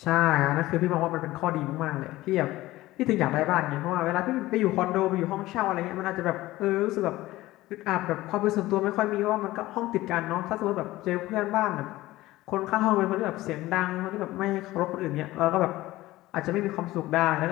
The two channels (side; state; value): right; quieter; 17.4 dB